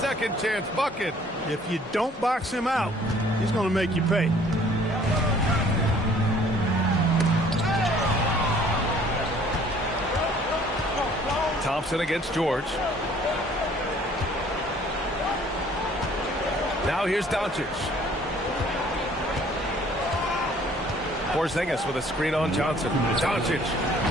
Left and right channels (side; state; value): both; normal; correlation 0.56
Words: chance bucket. If you don't box him out, he's going to make you pay. Thompson against George. Now here's Doncic. Porzingis with a screen on Johnson. Doncic.